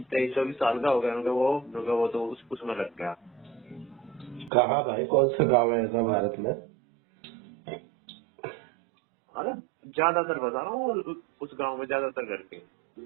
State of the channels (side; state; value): left; drops out; at 4.5 s